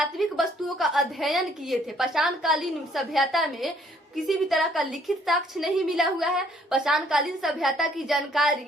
वस्तुओं का अध्ययन किए थे। पाषाण कालीन सभ्यता में किसी भी तरह का लिखित साक्ष्य नहीं मिला हुआ है। पाषाण कालीन सभ्यता की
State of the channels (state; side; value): normal; both; correlation 0.64